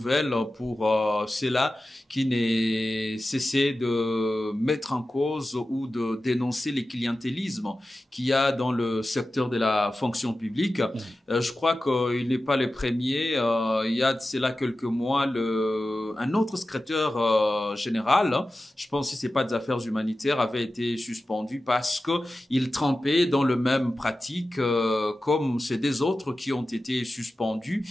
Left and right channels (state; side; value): normal; both; correlation 0.94